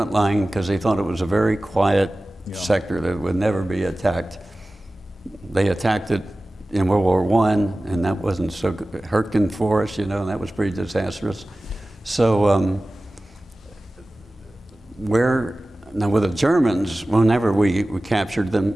line because they thought it was a very quiet sector that would never be attacked. They attacked it in World War I, and that wasn't so good. Hurtgen Forest, you know, and that was pretty disastrous. So now with the Germans, whenever we captured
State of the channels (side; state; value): both; normal; correlation 0.97